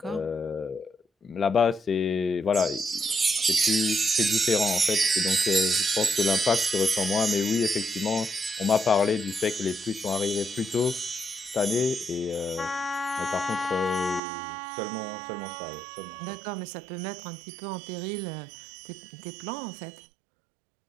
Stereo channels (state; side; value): drops out; left; at 14.2 s